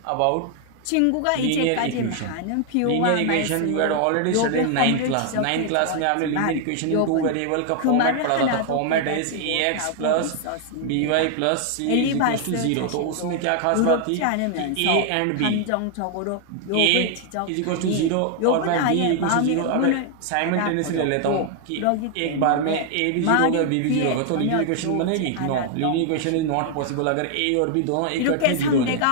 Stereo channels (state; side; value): different; both; correlation 0.00